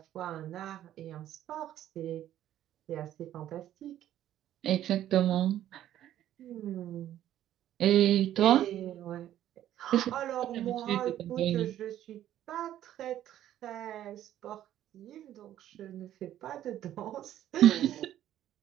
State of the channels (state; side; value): quieter; left; 12.1 dB